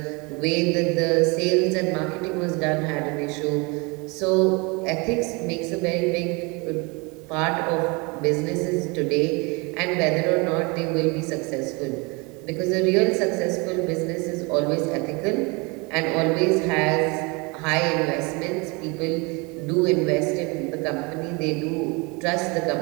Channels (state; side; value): quieter; left; 28.3 dB